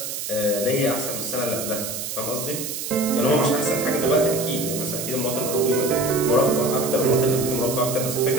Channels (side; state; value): right; noise; hiss, 5 dB below the sound